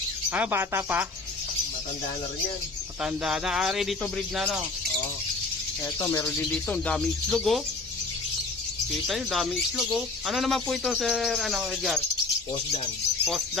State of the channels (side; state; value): right; quieter; 3.7 dB